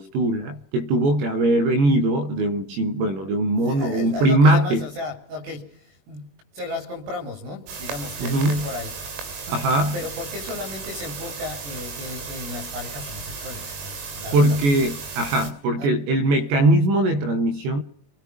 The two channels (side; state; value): left; late; 21 ms